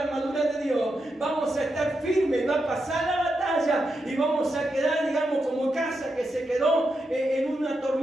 armadura de Dios, vamos a estar firmes, va a pasar la batalla y vamos a quedar, digamos, como casa que se quedó en una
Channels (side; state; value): both; normal; correlation 0.85